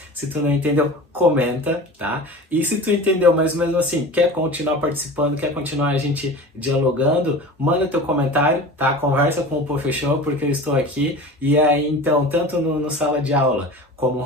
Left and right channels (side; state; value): both; normal; correlation 0.35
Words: se tu não entendeu, comenta, tá? E se tu entendeu, mas mesmo assim, quer continuar participando, quer continuar a gente dialogando, manda teu comentário, tá? Conversa com o professor, porque eu estou aqui. E aí, então, tanto no sala de aula, como